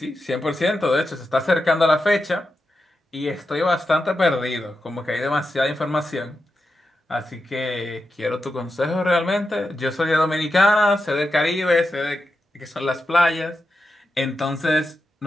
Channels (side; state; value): both; normal; correlation 0.89